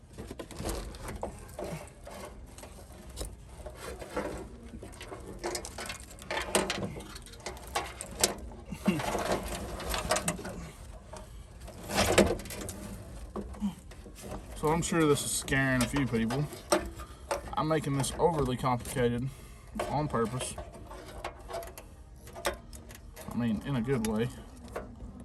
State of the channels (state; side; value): identical; both; correlation 1.00